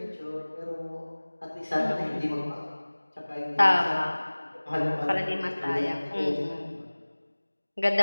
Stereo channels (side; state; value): both; inverted; correlation -1.00